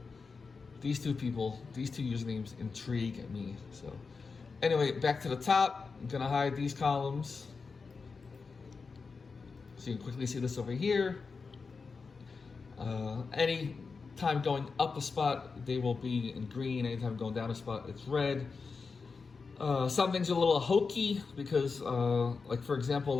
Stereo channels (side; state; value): right; quieter; 4.8 dB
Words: these 2 people, these 2 usernames intrigue me. So anyway, back to the top. I'm gonna hide these columns so you can quickly see this over here. Any time going up a spot, they will be in green. Anytime going down a spot, it's red. Some things are a little hokey because, like for example,